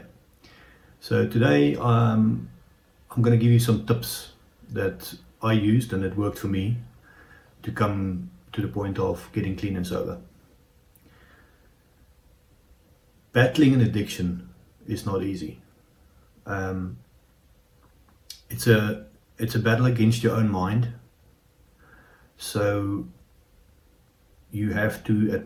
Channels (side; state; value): both; identical; correlation 1.00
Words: So today I'm going to give you some tips that I used and that worked for me to come to the point of getting clean and sober. Battling an addiction is not easy. It's a battle against your own mind, so you have to